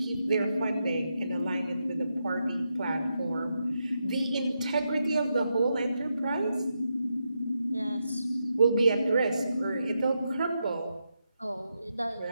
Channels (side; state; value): both; inverted; correlation -0.84